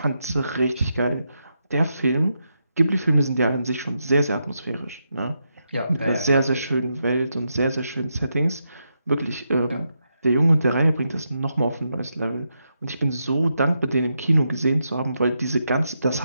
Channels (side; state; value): both; inverted; correlation -0.84